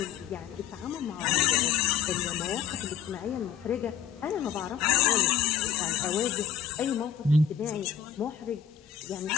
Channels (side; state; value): right; quieter; 8.4 dB